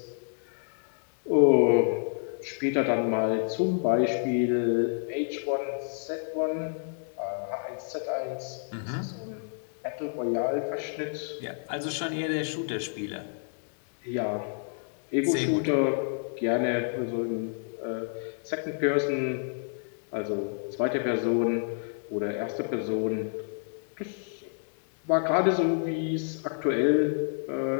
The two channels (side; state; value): right; silent; digital silence